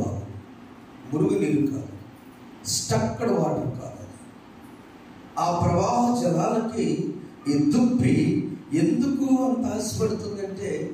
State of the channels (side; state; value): both; identical; correlation 1.00